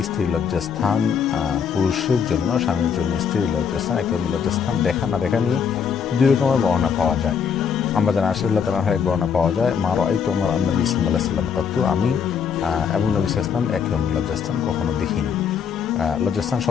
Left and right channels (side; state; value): right; quieter; 7.0 dB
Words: স্ত্রীর লজ্জাস্থান পুরুষের জন্য, স্বামীর জন্য স্ত্রীর লজ্জাস্থান, একদম লজ্জাস্থান দেখা না দেখা নিয়ে দুই রকমের বর্ণনা পাওয়া যায়। আমরা জানা আশরাল্লাহ তাআলার এক বর্ণনা পাওয়া যায়, মা রাআইতু আমার নবী সাল্লাল্লাহু আলাইহি ওয়াসাল্লাম কত, আমি এবং নবী সাল্লাল্লাহু আলাইহি ওয়াসাল্লাম একদম লজ্জাস্থান কখনো দেখিনি। লজ্জাস্থান